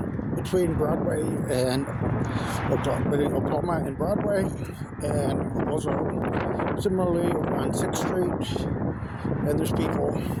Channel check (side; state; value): both; identical; correlation 1.00